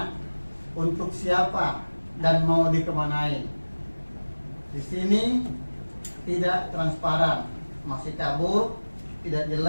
untuk siapa dan mau dikemanain? Di sini tidak transparan, masih kabur, tidak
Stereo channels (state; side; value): inverted; both; correlation -1.00